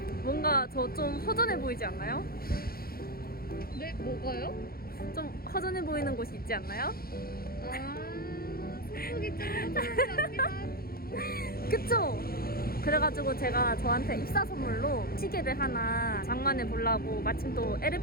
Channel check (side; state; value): right; late; 0.44 ms